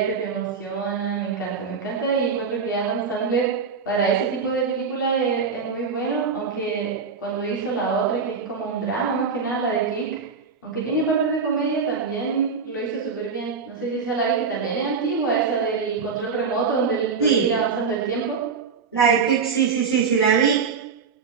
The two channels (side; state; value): left; quieter; 5.5 dB